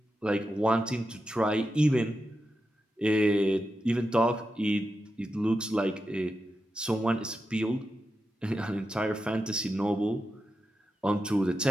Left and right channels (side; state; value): both; normal; correlation 0.89